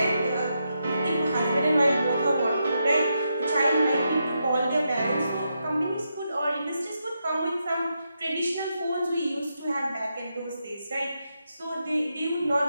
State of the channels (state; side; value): inverted; both; correlation -0.83